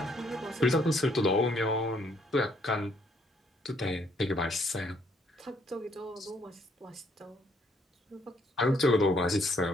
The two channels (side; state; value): both; normal; correlation 0.68